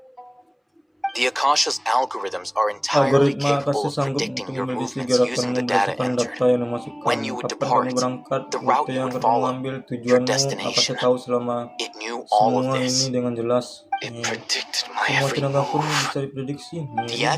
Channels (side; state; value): both; identical; correlation 1.00